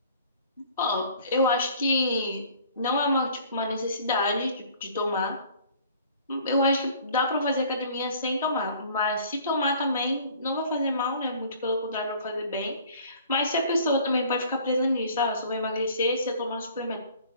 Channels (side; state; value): both; inverted; correlation -0.52